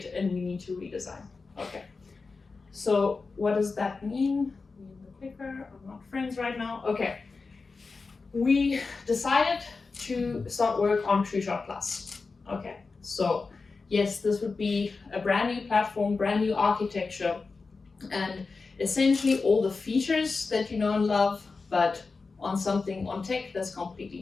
and we need to redesign. Okay. So what does that mean? Me and the clicker are not friends right now. Okay. We decided to start work on TrueChart Plus. Okay, so yes, this would be a brand new platform, brand new architecture, and essentially all the features that you know and love, but on tech that's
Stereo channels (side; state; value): right; quieter; 4.3 dB